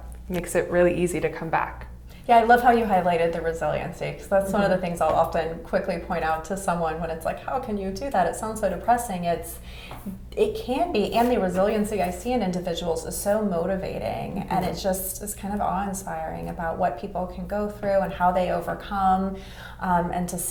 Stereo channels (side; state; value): both; identical; correlation 1.00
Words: makes it really easy to come back. Yeah, I love how you highlighted the resiliency, because that's one of the things I'll often quickly point out to someone when it's like, how can you do that? It sounds so depressing. It can be, and the resiliency I see in individuals is so motivating, and it just is kind of awe-inspiring about what people can go through and how they overcome, and to